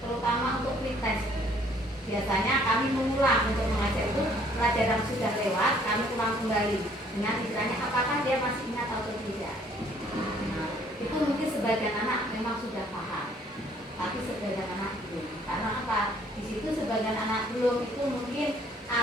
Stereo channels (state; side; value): normal; both; correlation 0.61